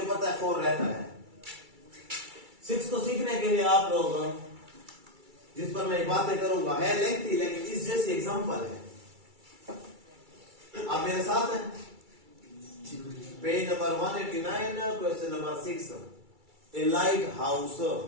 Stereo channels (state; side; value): late; left; 2.3 ms